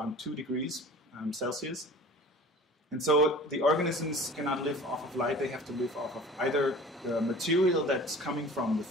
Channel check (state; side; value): normal; both; correlation 0.43